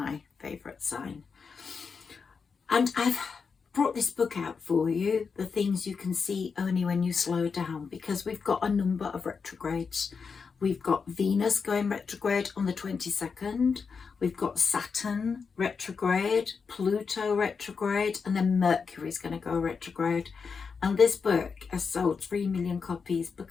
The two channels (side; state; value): right; quieter; 5.5 dB